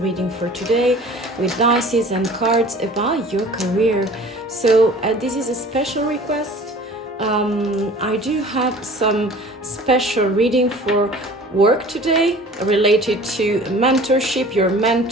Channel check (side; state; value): both; normal; correlation 0.45